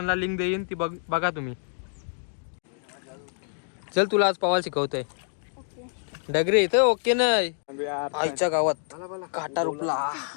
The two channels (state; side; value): silent; right; digital silence